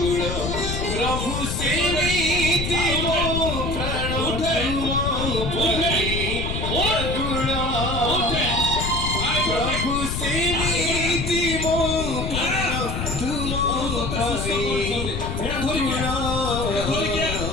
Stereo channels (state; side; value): noise; left; rumble, 3 dB below the sound